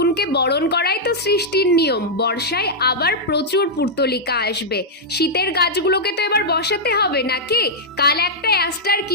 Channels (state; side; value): normal; both; correlation -0.06